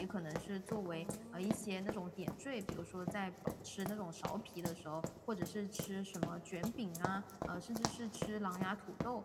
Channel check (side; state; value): both; identical; correlation 1.00